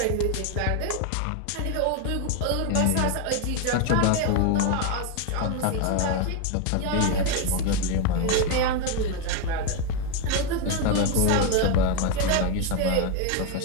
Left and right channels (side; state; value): both; different; correlation 0.02